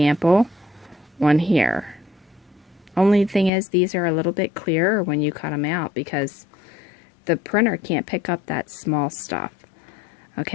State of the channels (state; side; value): drops out; right; at 3.5 s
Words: on here. Only thing is these are a little bit clearer when you cut them out because the printer can't pick up that small stuff.